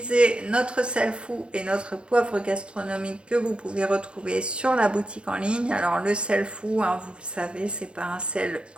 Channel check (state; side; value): late; left; 0.057 ms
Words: notre sel fou et notre poivre gastronomique que vous pouvez retrouver sur la boutique en ligne. Alors le sel fou, hein, vous le savez, c'est pas un sel